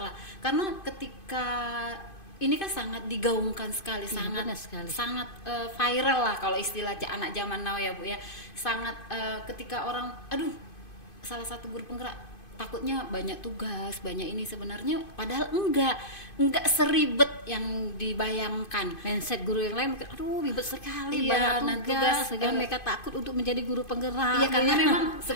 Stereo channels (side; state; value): right; late; 2.5 ms